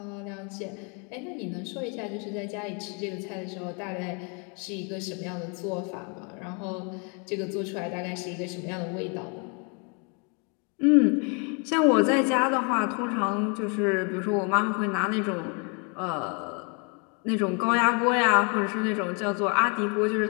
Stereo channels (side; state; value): right; quieter; 35.4 dB